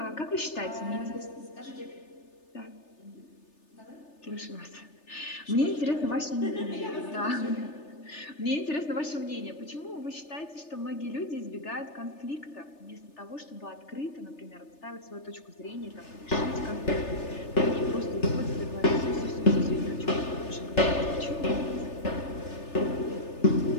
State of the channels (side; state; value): right; late; 3.3 ms